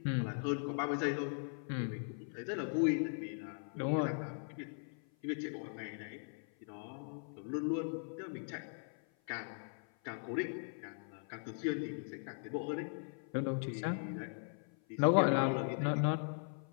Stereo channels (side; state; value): right; silent; 52 dB below the other